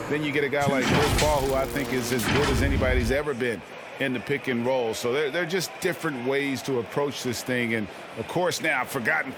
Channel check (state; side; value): identical; both; correlation 1.00